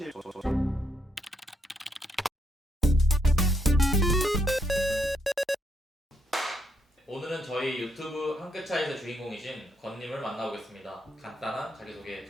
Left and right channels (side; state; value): both; normal; correlation 0.75